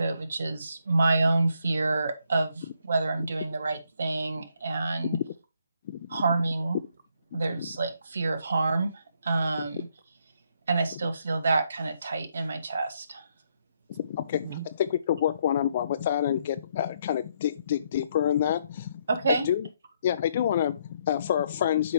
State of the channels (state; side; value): inverted; both; correlation -0.73